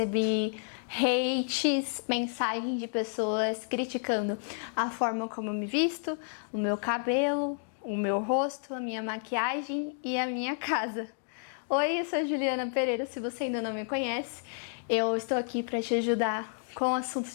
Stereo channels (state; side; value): silent; right; digital silence